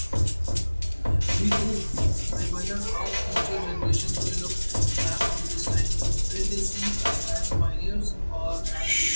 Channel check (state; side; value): inverted; both; correlation -1.00